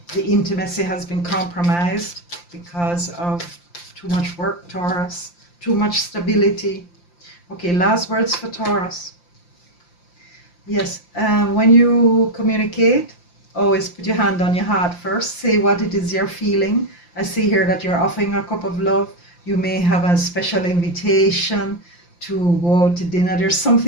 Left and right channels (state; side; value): late; right; 5.8 ms